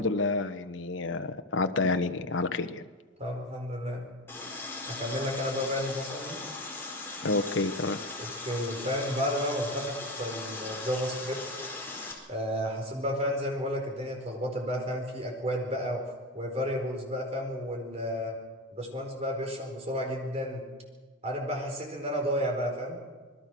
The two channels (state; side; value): normal; both; correlation 0.20